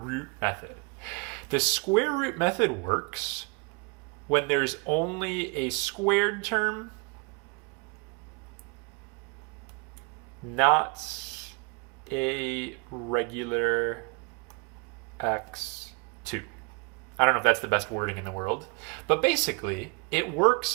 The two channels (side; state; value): left; quieter; 31.5 dB